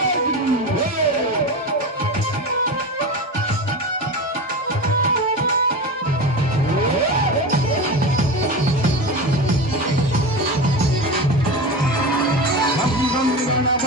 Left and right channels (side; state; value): both; normal; correlation 0.25